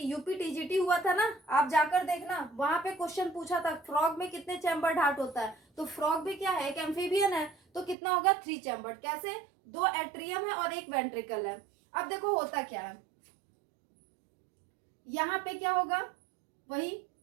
यूपी टीजीटी हुआ था ना, आप जाकर देखना, वहां पे क्वेश्चन पूछा था फ्रॉग में कितने चैम्बर्ड हार्ट होता है। तो फ्रॉग भी क्या है, एक एम्फीबियन है, तो कितना होगा, 3 चैम्बर्ड। कैसे, 2 एट्रियम है और 1 वेंट्रिकल है। अब देखो होता क्या है, यहां पे क्या होगा, वही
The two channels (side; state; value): left; drops out; at 8.0 s